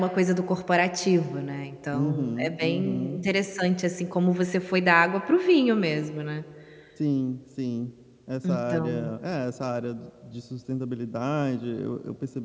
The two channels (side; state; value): both; identical; correlation 1.00